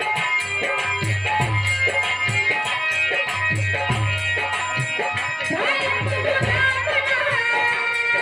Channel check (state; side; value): identical; both; correlation 1.00